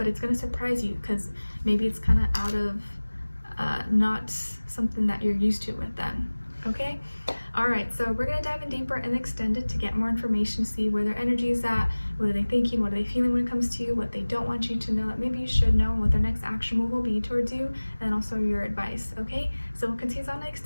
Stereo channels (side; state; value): both; inverted; correlation -1.00